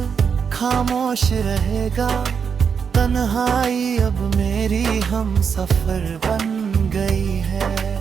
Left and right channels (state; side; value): quieter; left; 6.5 dB